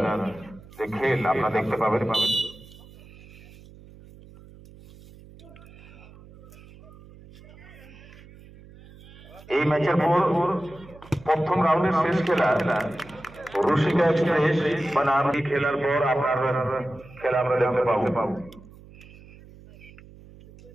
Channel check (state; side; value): noise; right; hum, 21 dB below the sound